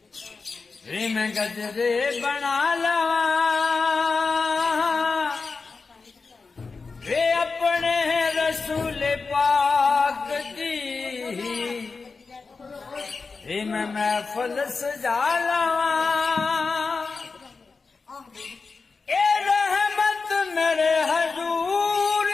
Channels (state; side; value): quieter; right; 4.4 dB